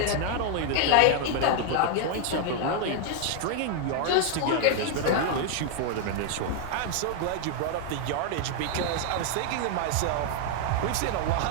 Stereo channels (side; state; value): both; different; correlation 0.00